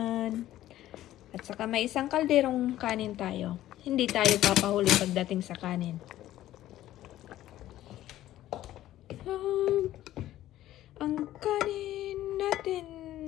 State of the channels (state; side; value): quieter; right; 13.9 dB